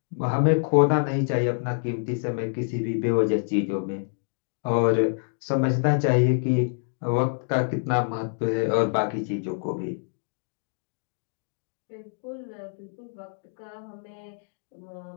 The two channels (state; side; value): silent; right; digital silence